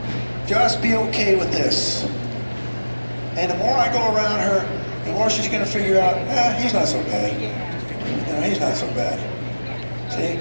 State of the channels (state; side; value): inverted; both; correlation -1.00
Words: Just be okay with this. And the more I go around her, the more she's going to figure out, he's not so bad. You know, he's not so bad. See,